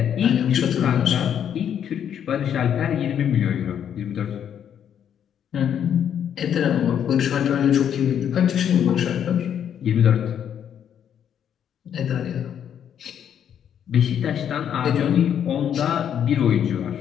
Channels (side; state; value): right; quieter; 9.0 dB